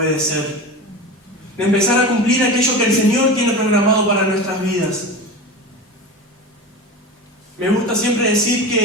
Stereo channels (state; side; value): normal; both; correlation 0.28